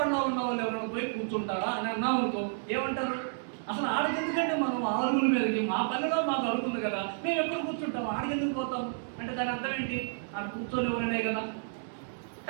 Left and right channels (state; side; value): silent; left; digital silence